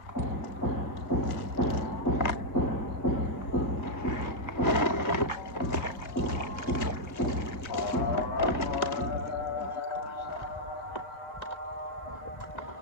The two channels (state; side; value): late; right; 1.5 ms